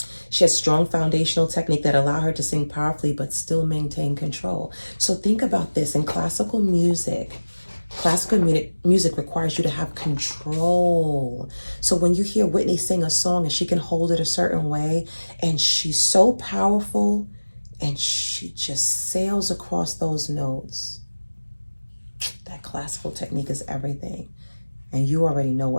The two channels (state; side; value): inverted; both; correlation -1.00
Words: She has strong foundational technique that allow her to sing powerfully but still maintain control. So think about this. In classical music requires you to have control. So when you hear Whitney sing a song and she can hold it a certain way, and she's so powerful and she just sails across those notes, that classical technique is everything. And you already know